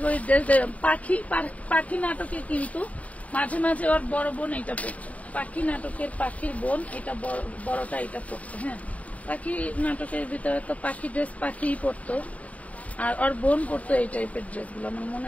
ড্রেস। পাখি নাটকে কিন্তু মাঝে মাঝে ওর বড় বোন এটা পড়তো, পাখি নাটকের পাখির বোন এটা বড়টা এটা পড়তো। হ্যাঁ পাখি নাটকের ভিতরে তো পাখি ড্রেস পাখি পড়তো, আর ওর বোন পড়তো এই টাইপের ড্রেস গুলো, আমার মনে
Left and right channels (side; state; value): right; late; 0.069 ms